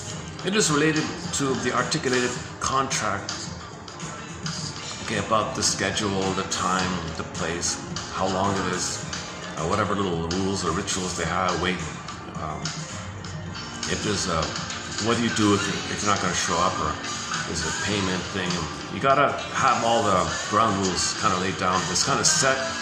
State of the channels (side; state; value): both; identical; correlation 1.00